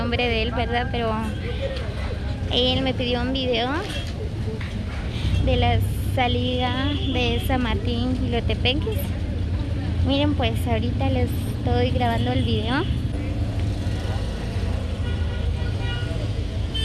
de él, ¿verdad? Pero él me pidió un video de la salida de San Martín Jilotepeques. Miren, pues ahorita les estoy grabando el video.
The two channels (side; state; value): both; identical; correlation 1.00